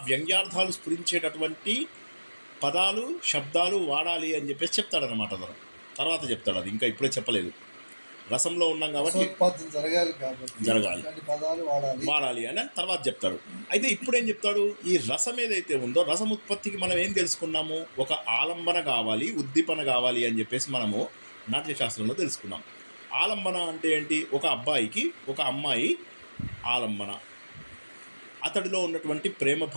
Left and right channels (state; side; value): inverted; both; correlation -1.00